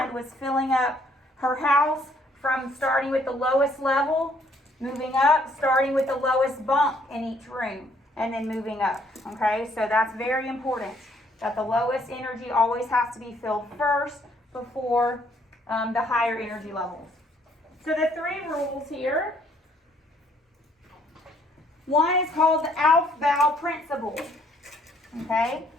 was filling up her house from starting with the lowest level, moving up, starting with the lowest bunk in each room, and then moving up, okay? So that's very important, that the lowest energy always has to be filled first before the higher energy levels. So the three rules here. One is called the Aufbau principle. Okay,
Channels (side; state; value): both; normal; correlation 0.66